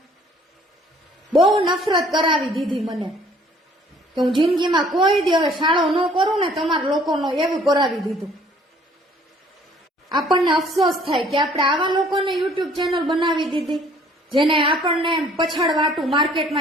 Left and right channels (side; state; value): both; normal; correlation 0.57